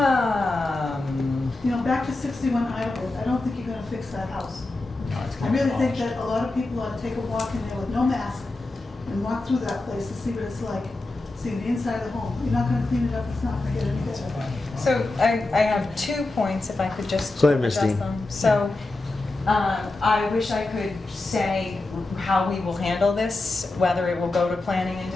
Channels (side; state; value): right; quieter; 3.0 dB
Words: Back to 61 Idlewood, I don't think you're gonna fix that house. No, it's I gonna be really think demolished. that a lot of people ought to take a walk in there with no mask and walk through that place to see what it's like, see the inside of the home. You're not gonna clean it up, it's not gonna get any better. So I have 2 points, if I could just Go ahead, Ms. address Dean. them. So I wish I could say how we will handle this, whether it will go to planning and